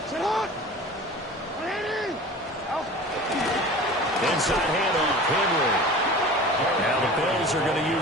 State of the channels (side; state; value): both; normal; correlation 0.38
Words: Inside handoff, Henry. Now the Bills are going to